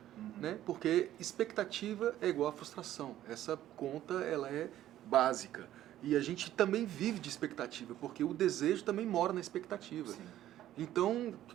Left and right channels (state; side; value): quieter; left; 12.9 dB